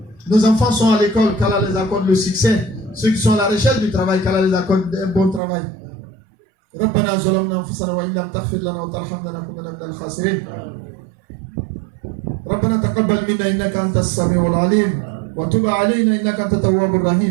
Nos enfants sont à l'école, qu'Allah les accorde le succès. Ceux qui sont à la recherche du travail, qu'Allah les accorde un bon travail. ربنا ظلمنا أنفسنا وإن لم تغفر لنا وترحمنا لنكونن من الخاسرين. ربنا تقبل منا إنك أنت السميع العليم وتب علينا إنك أنت التواب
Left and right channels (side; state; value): left; drops out; at 5.4 s